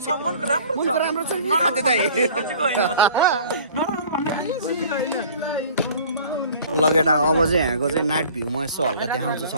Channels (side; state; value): both; inverted; correlation -0.48